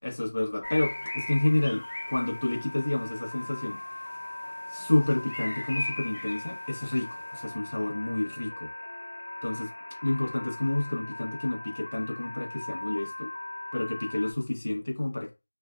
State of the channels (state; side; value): inverted; both; correlation -1.00